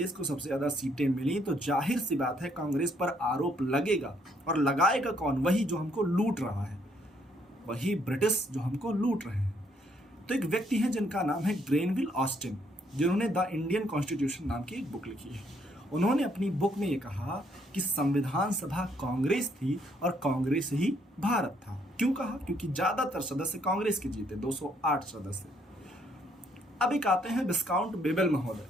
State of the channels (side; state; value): both; normal; correlation 0.70